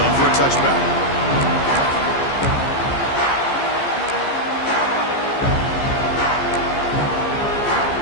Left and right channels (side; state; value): right; late; 15 ms